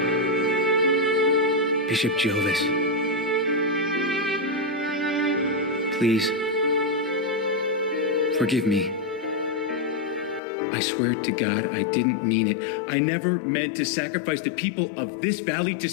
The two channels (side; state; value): right; drops out; at 10.4 s